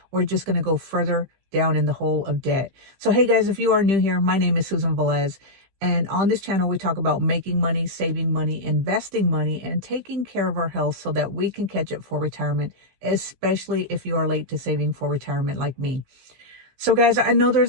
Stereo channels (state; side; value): late; left; 15 ms